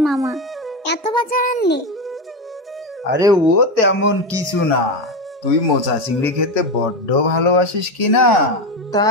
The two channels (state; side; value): normal; both; correlation 0.15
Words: মামা? এত বাজার আনলে? আরে ও তেমন কিছু না। তুই মোচা চিংড়ি খেতে বড্ড ভালোবাসিস কি না,